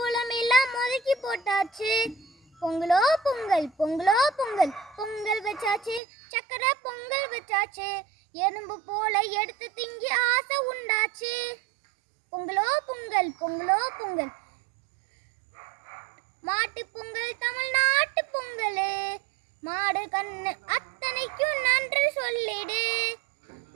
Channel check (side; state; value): left; drops out; at 6.0 s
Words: எல்லாம் ஒதுக்கி போட்டாச்சு. பொங்கலோ பொங்கல் பொங்கலோ பொங்கல் பொங்கல் வச்சாச்சு. சக்கரை பொங்கல் வச்சாச்சு. எறும்பு போல எடுத்து திங்கி ஆசை உண்டாச்சு. பொங்கலோ பொங்கல் பொங்கலோ பொங்கல். மாட்டு பொங்கல் தமிழ்நாட்டு பொங்கல். மாடு கண்ணு அத்தனைக்கும் நன்றி சொல்லிடு.